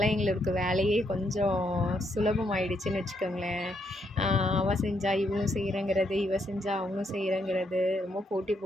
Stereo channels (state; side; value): normal; both; correlation 0.76